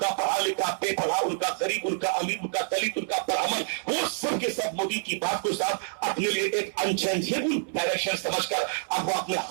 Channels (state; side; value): silent; left; 60 dB below the other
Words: پڑھا لکھا، بے پڑھا، ان کا غریب، ان کا امیر، ان کا دلت، ان کا پرامن، وہ سب کے سب مودی کی بات کو صاحب اپنے لیے ایک انچینجیبل ڈائریکشن سمجھ کر اب وہ اپنے